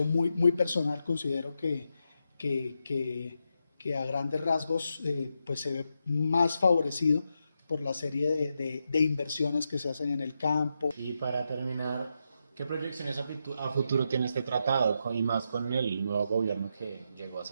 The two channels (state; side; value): inverted; both; correlation -0.85